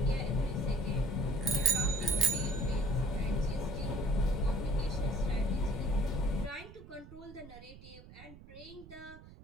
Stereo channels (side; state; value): right; noise; rumble, 18 dB below the sound